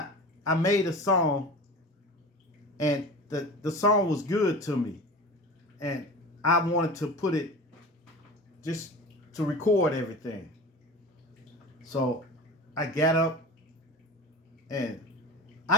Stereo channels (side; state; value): both; normal; correlation 0.34